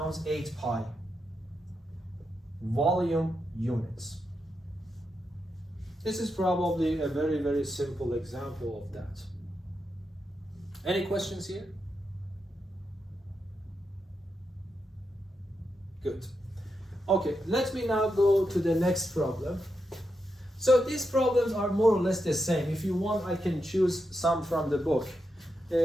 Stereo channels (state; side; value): normal; both; correlation 0.85